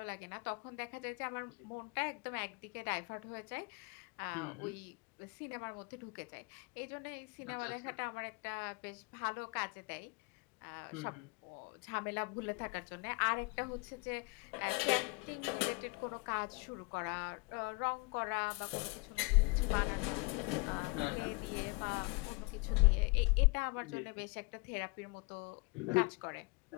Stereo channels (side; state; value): right; quieter; 29.2 dB